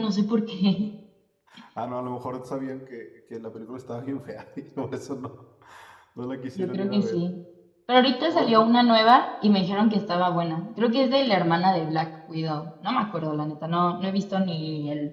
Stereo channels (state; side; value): identical; both; correlation 1.00